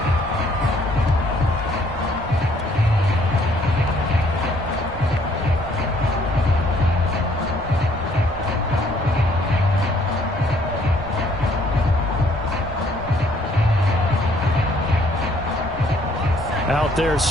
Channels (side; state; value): left; noise; rumble, 17 dB below the sound